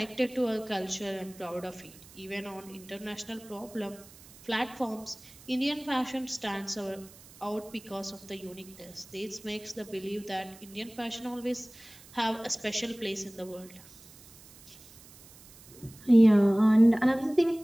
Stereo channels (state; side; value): noise; right; hiss, 22 dB below the sound